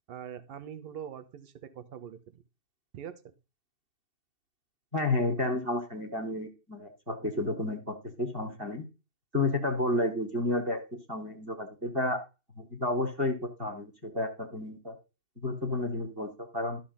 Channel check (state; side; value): late; left; 2.7 ms